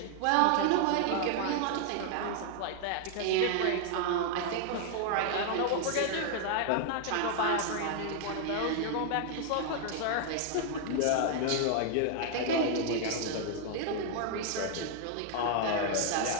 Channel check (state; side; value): different; both; correlation 0.00